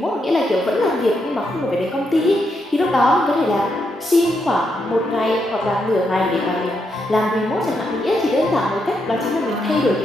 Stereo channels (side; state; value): both; normal; correlation 0.80